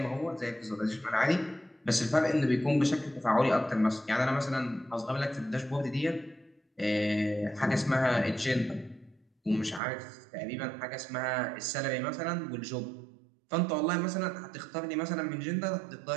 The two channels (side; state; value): left; drops out; at 9.8 s